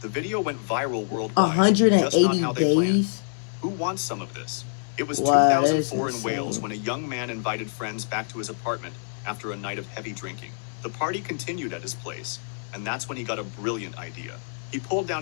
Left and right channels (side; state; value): right; silent; digital silence